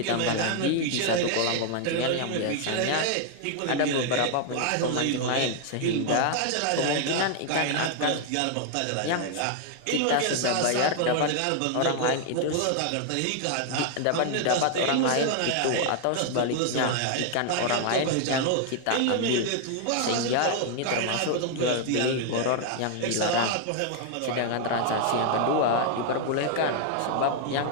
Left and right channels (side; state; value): both; different; correlation 0.00